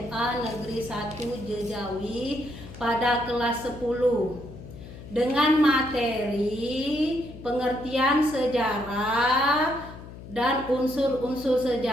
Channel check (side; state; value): left; noise; hum, 15 dB below the sound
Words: Negeri 1 Jejawi pada kelas 10 dengan materi pengertian sejarah dan unsur-unsur